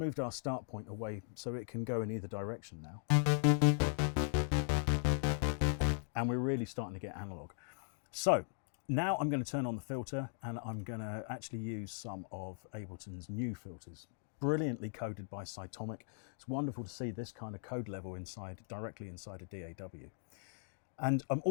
our start point away so it can go in either direction now. And we're really starting to get analog. So now I'm going to turn on the filter and I'm going to actually use some of Ableton's new filters, brilliantly coded by Cytomic. It's wonderful to see this kind of code level directly inside a DAW. And I'm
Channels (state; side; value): silent; right; digital silence